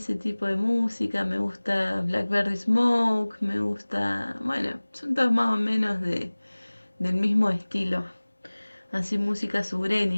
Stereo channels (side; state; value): both; inverted; correlation -1.00